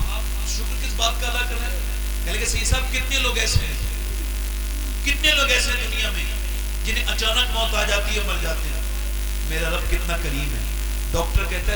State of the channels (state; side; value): identical; both; correlation 1.00